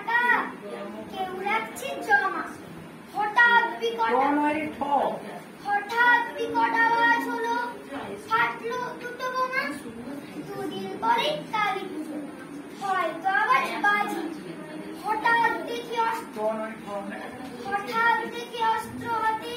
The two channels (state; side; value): identical; both; correlation 1.00